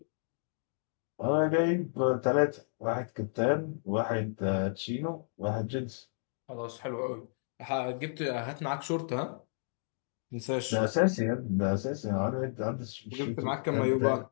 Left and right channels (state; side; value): silent; right; digital silence